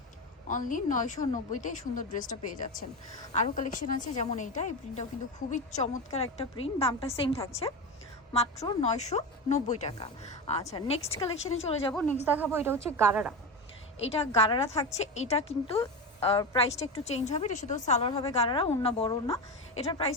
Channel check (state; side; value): normal; both; correlation 0.20